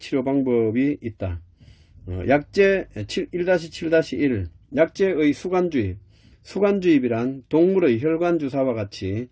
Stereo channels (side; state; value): both; identical; correlation 1.00